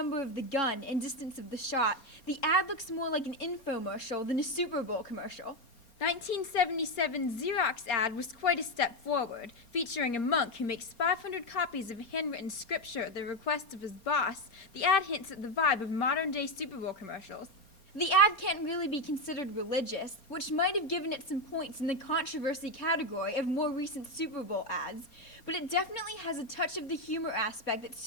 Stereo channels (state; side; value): late; right; 4.3 ms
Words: of the gun and distance of the shot, the ad looks more like an infomercial than a Super Bowl commercial. 1977's Xerox ad was quite a step forward, featuring a monk who makes 500 copies of handwritten scripture at the request of his boss. The ad hints at the vibe of modern-day Super Bowl commercials. The ad can't really be considered religious, which might have given it some points in the controversy category of more recent Super Bowl ads, but it definitely has a touch of the humor aspect that